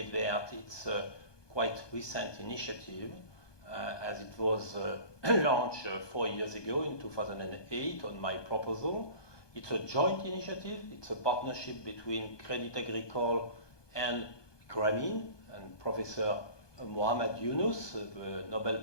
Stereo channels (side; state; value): right; late; 1.2 ms